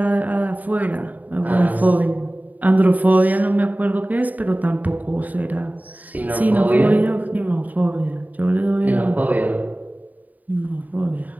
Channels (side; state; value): left; late; 0.078 ms